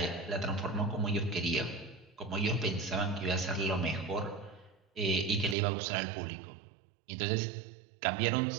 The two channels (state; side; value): drops out; left; at 5.6 s